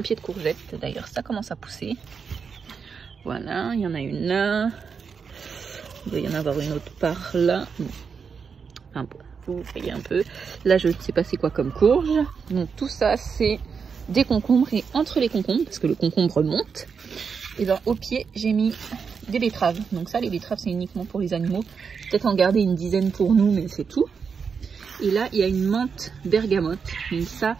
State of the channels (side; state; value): left; quieter; 5.9 dB